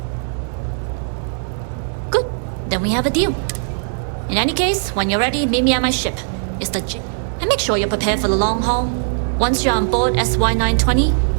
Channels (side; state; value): left; silent; digital silence